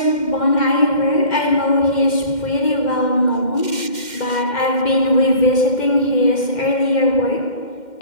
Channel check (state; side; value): late; right; 2.1 ms